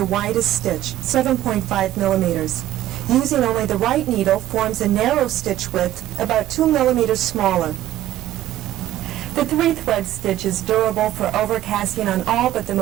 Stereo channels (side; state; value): left; quieter; 13.5 dB